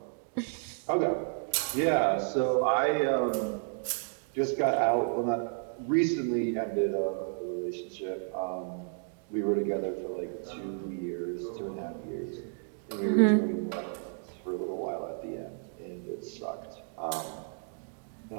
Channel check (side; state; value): left; silent; 57 dB below the other